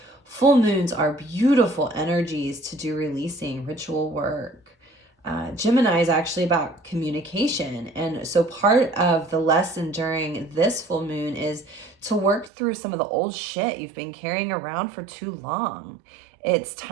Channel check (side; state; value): left; drops out; at 12.5 s